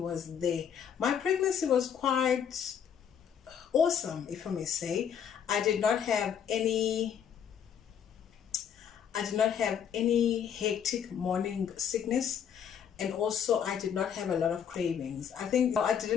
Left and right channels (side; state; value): right; quieter; 8.3 dB